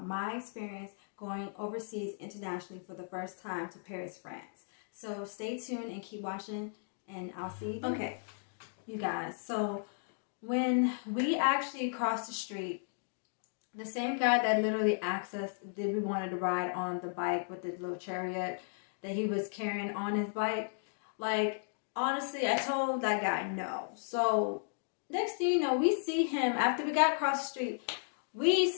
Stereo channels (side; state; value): right; silent; digital silence